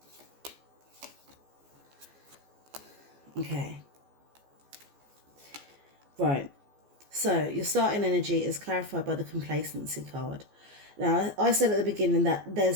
Okay. Right. So your starting energy is clarified by the complacency card. Now, I said at the beginning that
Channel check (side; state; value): left; late; 14 ms